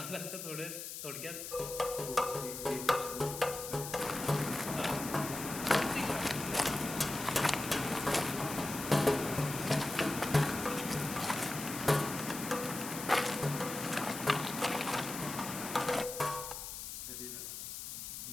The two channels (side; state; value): left; noise; hiss, 7 dB below the sound